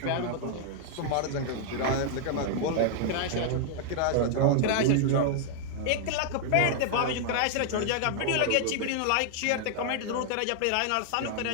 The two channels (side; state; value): both; different; correlation 0.00